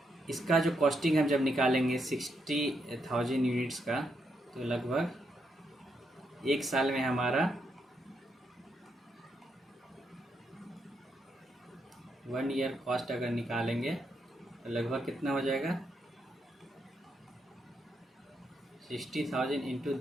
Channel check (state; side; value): normal; both; correlation 0.80